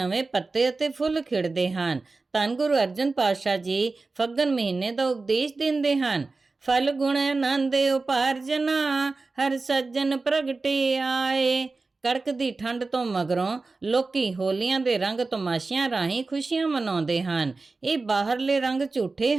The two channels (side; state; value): left; quieter; 3.7 dB